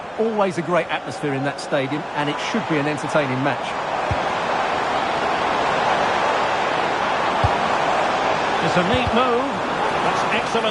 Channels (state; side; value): identical; both; correlation 1.00